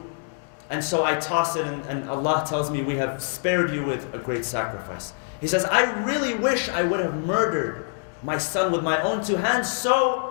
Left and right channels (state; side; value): silent; right; 61 dB below the other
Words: and so I toss it and Allah tells me, we have spared you with a great sacrifice. He says, I really wish I would have murdered my son with my own 2 hands